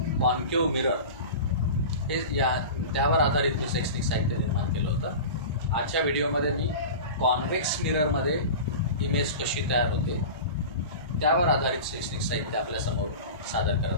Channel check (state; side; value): inverted; both; correlation -0.32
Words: concave mirror हे त्यावर आधारित मी शैक्षणिक साहित्य निर्माण केलं होतं. आजच्या व्हिडिओमध्ये मी कॉन्व्हेक्स मिररमध्ये इमेज कशी तयार होते त्यावर आधारित शैक्षणिक साहित्य आपल्यासमोर सादर